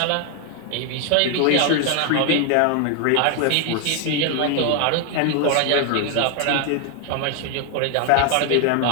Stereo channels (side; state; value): both; different; correlation 0.01